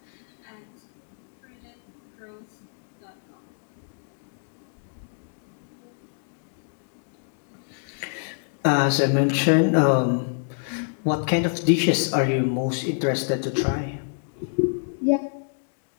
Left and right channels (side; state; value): right; silent; digital silence